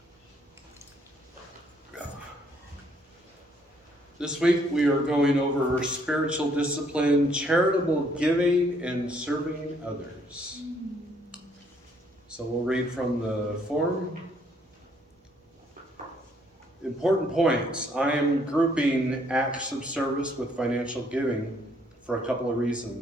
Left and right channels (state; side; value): normal; both; correlation 0.67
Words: This week we are going over spiritual discipline, charitable giving, and serving others. So we'll read from the form. Important points. I am grouping acts of service with financial giving for a couple of